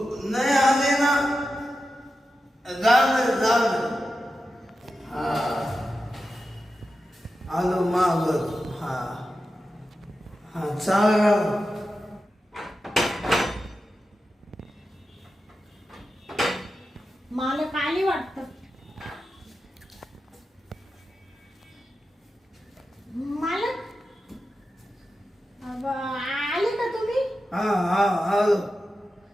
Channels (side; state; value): both; normal; correlation 0.91